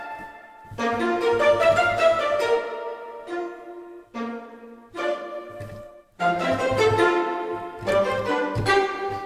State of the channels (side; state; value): both; identical; correlation 1.00